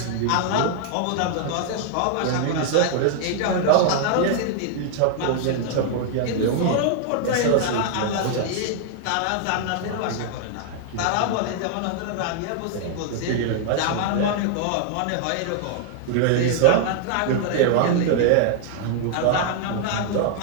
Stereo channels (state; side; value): different; both; correlation -0.01